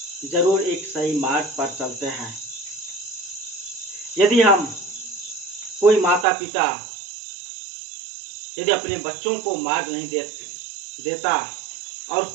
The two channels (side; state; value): left; drops out; at 6.2 s